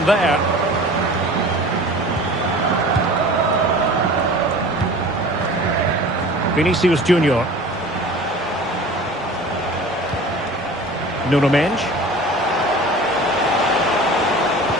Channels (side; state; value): both; normal; correlation 0.41